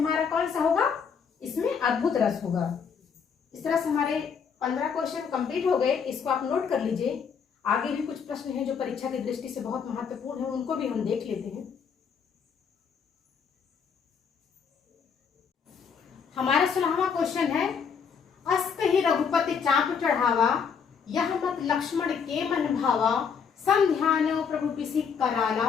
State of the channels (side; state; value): right; quieter; 6.5 dB